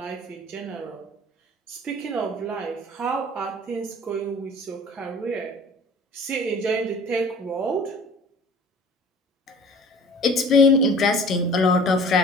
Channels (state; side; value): normal; both; correlation 0.46